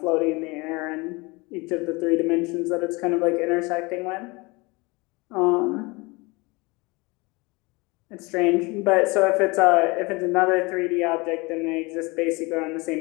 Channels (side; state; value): right; quieter; 25.5 dB